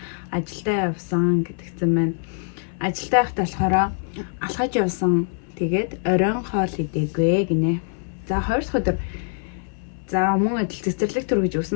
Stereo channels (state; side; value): silent; right; 59 dB below the other